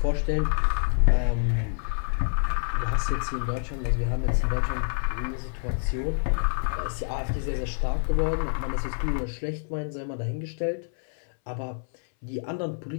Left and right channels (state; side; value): silent; right; 60 dB below the other